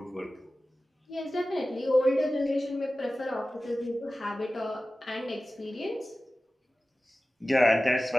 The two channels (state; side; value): normal; both; correlation 0.96